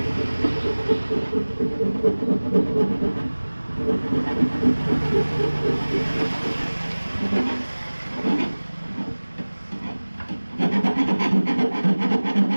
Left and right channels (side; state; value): both; inverted; correlation -1.00